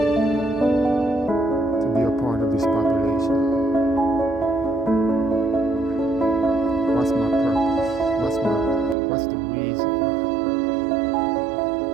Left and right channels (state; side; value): drops out; left; at 9.0 s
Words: to be a part of this population? What's my purpose? What's the reason why?